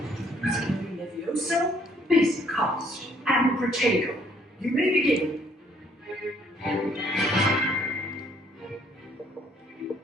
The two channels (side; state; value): both; normal; correlation 0.64